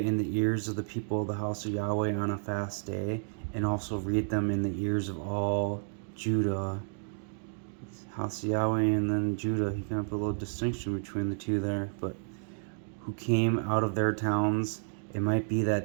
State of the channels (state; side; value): silent; left; digital silence